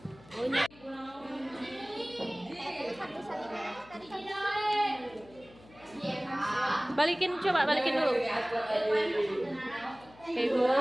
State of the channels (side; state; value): left; noise; hum, 23 dB below the sound